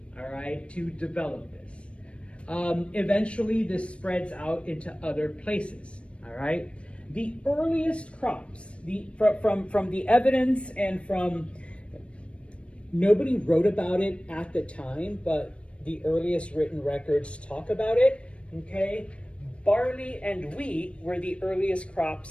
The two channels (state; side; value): late; right; 0.060 ms